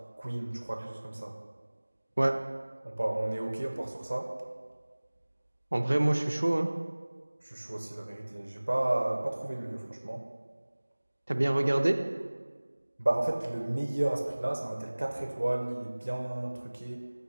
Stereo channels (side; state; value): both; inverted; correlation -1.00